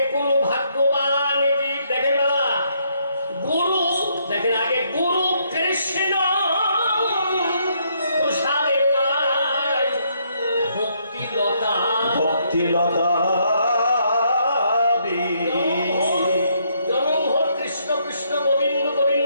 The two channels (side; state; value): both; inverted; correlation -0.72